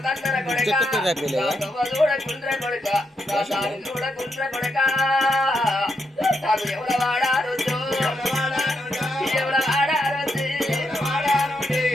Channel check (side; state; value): both; normal; correlation 0.81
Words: కొడక చూడకుండ్ర కొడక చూడకుండ్ర కొడక నాకు ఎవడ వాడారు ఎవడ వాడారు